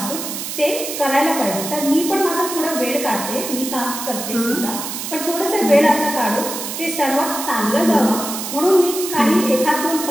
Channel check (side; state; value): right; noise; hiss, 6 dB below the sound